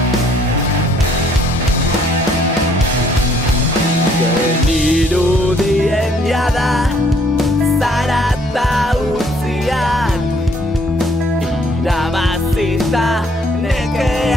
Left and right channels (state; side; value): normal; both; correlation 0.64